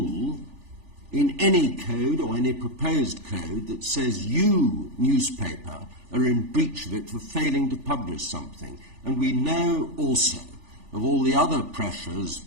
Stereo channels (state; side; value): late; left; 3.4 ms